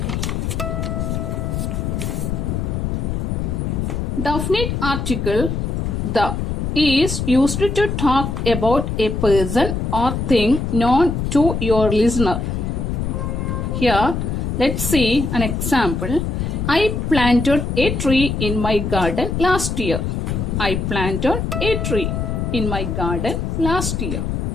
Definite article the is used to talk about a person or thing known to your listener. Here, let's see an example. I planted a tree in my garden last year. I planted a tree in my garden last year.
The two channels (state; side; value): noise; left; rumble, 2 dB below the sound